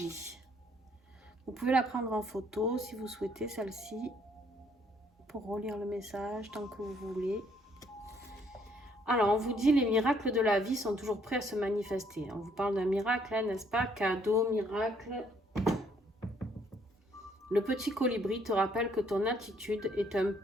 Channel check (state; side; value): normal; both; correlation 0.66